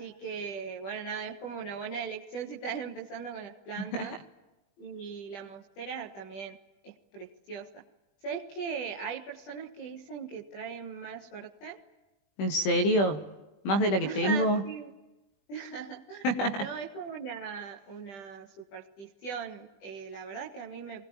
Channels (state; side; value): late; right; 20 ms